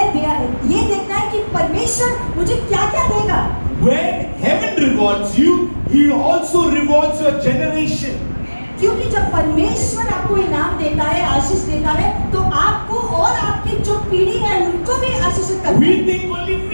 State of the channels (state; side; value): inverted; both; correlation -1.00